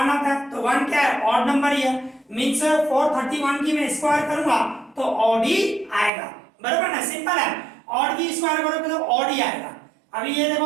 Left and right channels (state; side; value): drops out; left; at 6.1 s